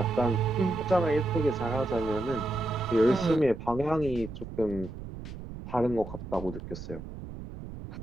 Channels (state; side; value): noise; right; rumble, 11 dB below the sound